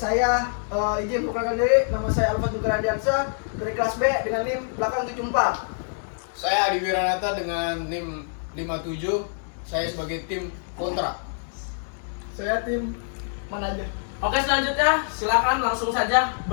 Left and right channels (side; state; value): right; silent; digital silence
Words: izin memperkenalkan diri. Nama saya Alfa Dukaradiansa dari kelas B dengan NIM belakang 74. Saya Adi Wiranata dengan NIM 57. Saya sebagai tim kontra. Saya tim manajer. Oke, selanjutnya silakan langsung saja